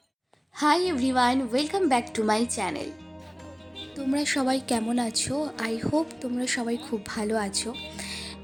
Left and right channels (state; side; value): identical; both; correlation 1.00